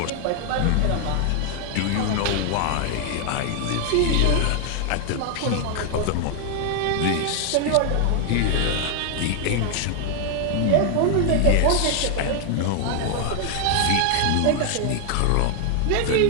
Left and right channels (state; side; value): different; both; correlation 0.00